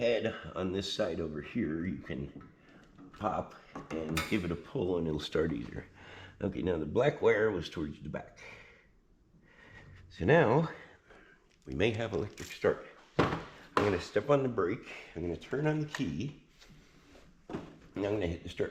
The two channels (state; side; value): identical; both; correlation 1.00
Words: on this side over here. You can pop and give it a pull and it'll start easier. Okay, now the black wire was towards the back. So now we may have electric start. I'm going to step on the brake, I'm going to turn on the key, and I'm going to hit the